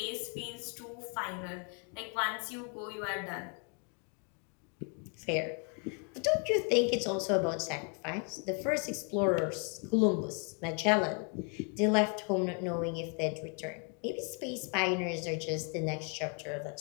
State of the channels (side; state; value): right; quieter; 37.8 dB